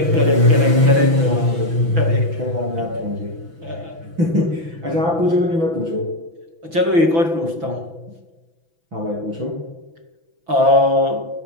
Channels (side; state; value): left; late; 6.0 ms